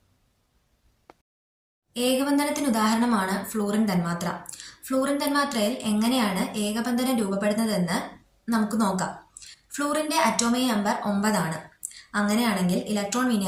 ഏകബന്ധനത്തിന് ഉദാഹരണമാണ് ഫ്ലൂറിൻ തന്മാത്ര. ഫ്ലൂറിൻ തന്മാത്രയിൽ എങ്ങനെയാണ് ഏകബന്ധനം രൂപപ്പെടുന്നതെന്ന് നമുക്ക് നോക്കാം. ഫ്ലൂറിൻ്റെ അറ്റോമിക് നമ്പർ 9 ആണ്. അങ്ങനെയാണെങ്കിൽ ഇലക്ട്രോൺ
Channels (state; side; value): identical; both; correlation 1.00